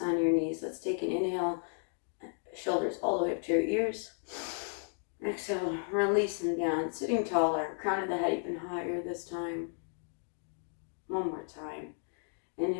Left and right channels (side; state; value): right; silent; 55 dB below the other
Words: on your knees. Let's take an inhale, shoulders all the way up to your ears. Exhale, release them down, sitting taller, crown of the head even higher this time. One more time.